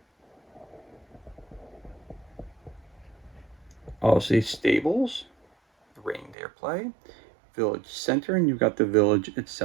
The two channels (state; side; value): drops out; left; at 6.4 s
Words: Obviously stables, reindeer play, village center, and you've got the village